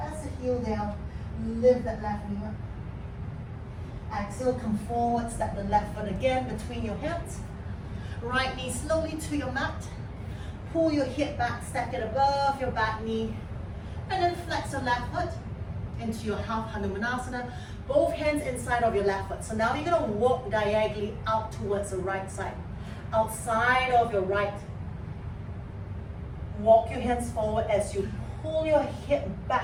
the heel down, lift that left knee up. Exhale, come forward, step the left foot again between your hands. Right knee slowly to your mat. Pull your hip back, stack it above your back knee. And then flex your left foot into your half Hanumanasana. Both hands inside of your left foot. So now you're going to walk diagonally out towards the right side. Outside of your right. Walk your hands forward as you pull your hip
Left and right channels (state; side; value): identical; both; correlation 1.00